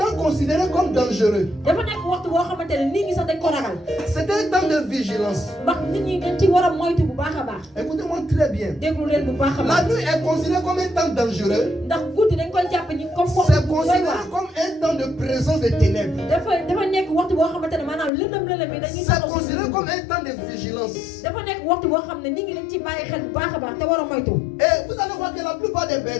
temps considéré comme dangereux. dafa nekk waxtu boo xamante ne nit ñi sax dañ ko ragal C'était un temps de vigilance. ndax nit ñi dañ ci war a moytu bu baax a baax Écoutez-moi très bien. déglu leen bu baax a La baax nuit est considérée comme un temps dangereux. ndax guddi dañ koy jàpp ñi comme C'est waxtu bu doy considéré waar comme un temps de présence des ténèbres. dafa nekk waxtu boo xamante ne maanaam lëndëm lëndëm yi dañuy C'est taxaw si considéré guddi. comme un temps de vigilance. dafa nekk waxtu boo xam ne nit ñi dañ ci bàyyi xel bu baax a baax te war a moytu Et vous allez voir que la plupart des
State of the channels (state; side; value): drops out; right; at 18.1 s